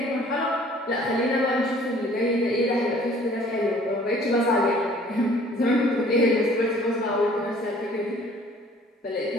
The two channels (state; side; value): normal; both; correlation 0.54